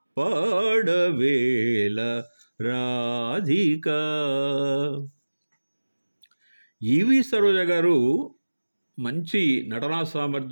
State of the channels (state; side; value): inverted; both; correlation -1.00